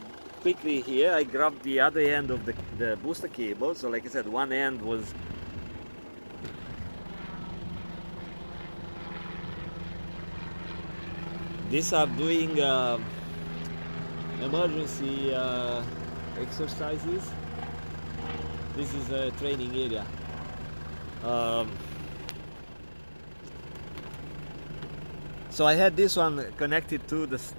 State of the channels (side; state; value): both; inverted; correlation -1.00